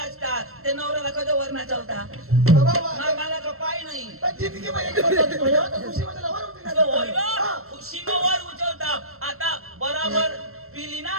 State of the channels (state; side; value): late; left; 0.63 ms